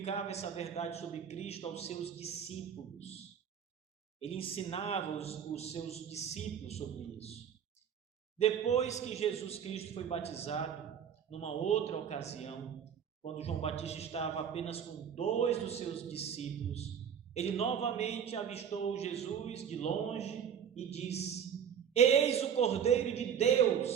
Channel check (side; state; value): left; quieter; 8.1 dB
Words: essa verdade sobre Cristo aos seus discípulos. Ele ensinava os seus discípulos sobre isso. Depois que Jesus Cristo foi batizado, numa outra ocasião, quando João Batista estava apenas com 2 dos seus discípulos, ele novamente avistou Jesus de longe e disse: eis o Cordeiro de